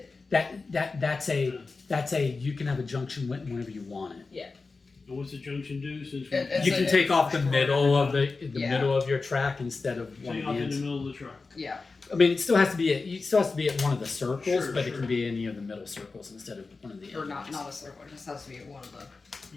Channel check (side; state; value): right; quieter; 4.0 dB